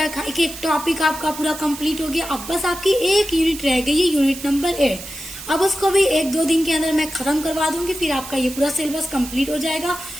एक टॉपिक आपका पूरा कंप्लीट हो गया। अब बस आपकी एक यूनिट रह गई है, यूनिट नंबर 8। अब उसको भी 1-2 दिन के अंदर मैं खत्म करवा दूंगी, फिर आपका ये पूरा सिलेबस कंप्लीट हो जाएगा।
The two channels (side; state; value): right; noise; hiss, 12 dB below the sound